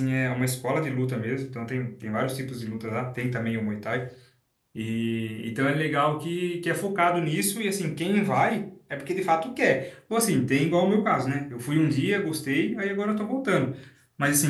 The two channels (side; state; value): both; identical; correlation 1.00